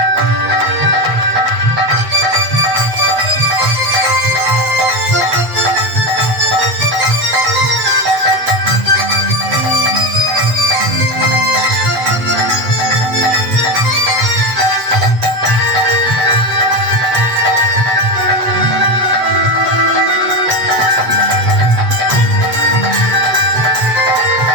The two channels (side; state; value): left; late; 8.2 ms